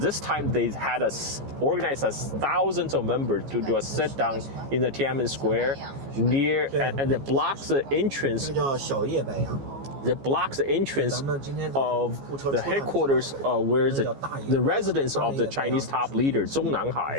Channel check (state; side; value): late; left; 15 ms